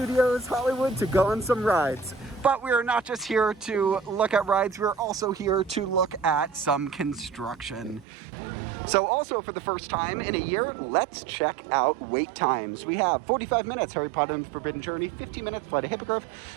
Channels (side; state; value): left; drops out; at 8.1 s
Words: Hollywood to go on some rides. But we are not just here to look at rides, we're also here to look at some construction. So also for the first time in a year, let's check out wait times. We have 45 minutes, Harry Potter and the Forbidden Journey, 50 minutes, Flight of Hippogriff,